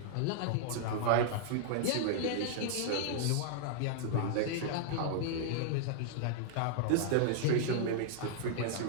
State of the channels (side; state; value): both; different; correlation -0.01